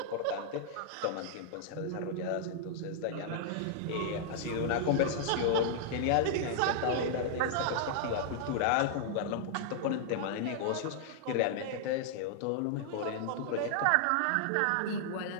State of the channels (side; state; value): both; different; correlation -0.01